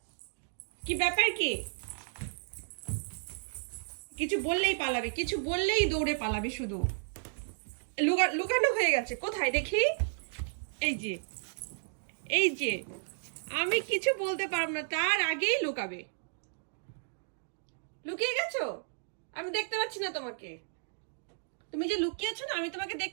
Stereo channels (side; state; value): left; silent; digital silence